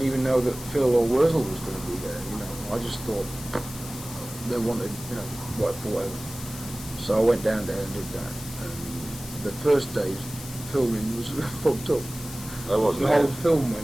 even know that Phil or Wurzel was going to be there, you know. I just thought they wanted, you know, whatever. So I went down there and did that. And the first day's filming was fucked up. I wasn't The there. whole film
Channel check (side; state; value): left; noise; hiss, 13 dB below the sound